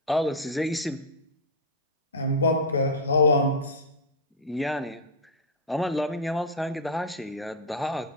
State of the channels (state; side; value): normal; both; correlation -0.01